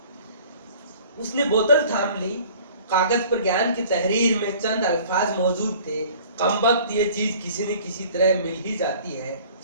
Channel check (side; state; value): both; inverted; correlation -0.49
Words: उसने बोतल थाम ली। कागज पर ज्ञान की तहरीर में चंद अल्फाज मौजूद थे, कमबख्त ये चीज किसी न किसी तरह मिल ही जाती है,